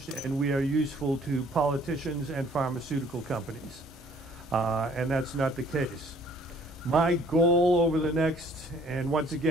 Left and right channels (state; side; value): normal; both; correlation 0.58